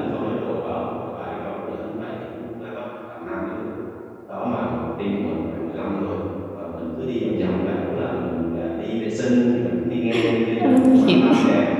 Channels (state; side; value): identical; both; correlation 1.00